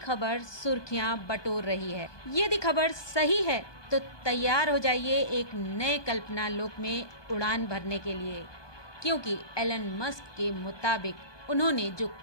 सुर्खियां बटोर रही है। यदि खबर सही है तो तैयार हो जाइए एक नए कल्पना लोक में उड़ान भरने के लिए, क्योंकि एलन मस्क के मुताबिक उन्होंने जो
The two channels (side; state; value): right; late; 1.2 ms